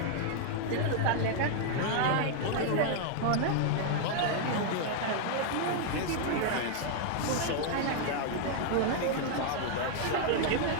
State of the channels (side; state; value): both; different; correlation 0.00